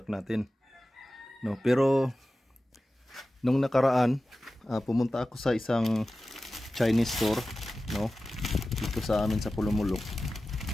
natin. No, pero nung nakaraan, pumunta ako sa isang Chinese store, no. Dito sa amin sa Pulumulok.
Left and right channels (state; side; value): normal; both; correlation 0.95